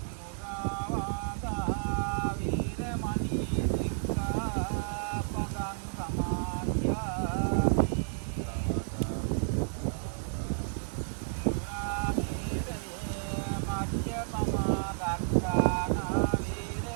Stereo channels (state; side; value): silent; left; 57 dB below the other